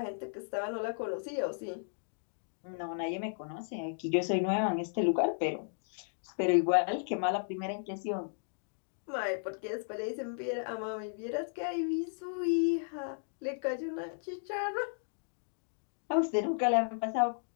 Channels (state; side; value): silent; right; digital silence